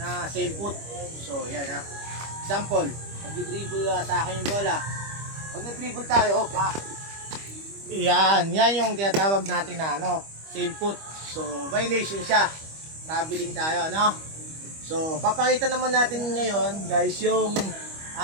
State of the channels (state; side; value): late; left; 25 ms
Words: same foot. So, yan ha. Example, mag-dribble sa akin yung bola. Pag nag-dribble tayo, yan yung tinatawag natin na same foot. So, violation siya. Traveling tayo, no? So, papakita naman natin ngayon, guys, yung